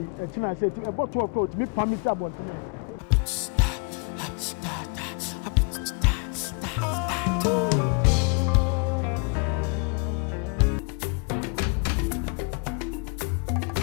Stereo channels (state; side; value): quieter; right; 35.3 dB